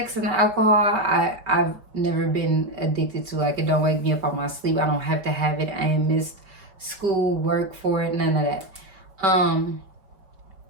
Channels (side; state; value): left; late; 5.2 ms